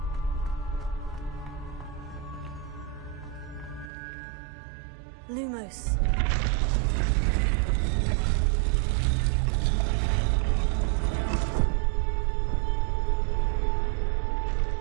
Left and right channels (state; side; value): drops out; left; at 3.9 s